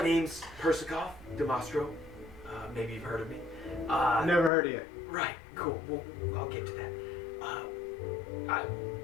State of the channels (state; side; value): drops out; right; at 4.5 s